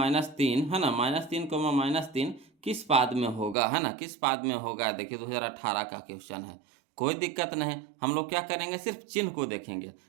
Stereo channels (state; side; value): drops out; left; at 3.6 s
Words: है ना, -3, किस पाद में होगा, है ना, किस पाद में होगा। देखिए 2018 का क्वेश्चन है, कोई दिक्कत नहीं। हम लोग क्या करेंगे, सिर्फ चिन्ह को देखेंगे।